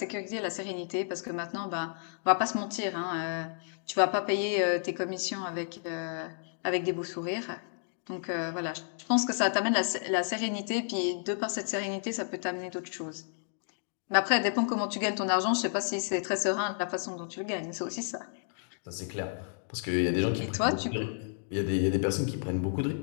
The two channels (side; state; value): right; silent; digital silence